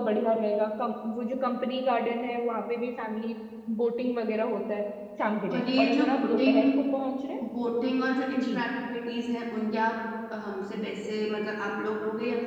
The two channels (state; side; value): identical; both; correlation 1.00